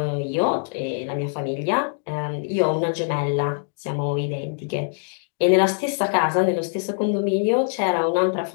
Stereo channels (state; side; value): silent; right; digital silence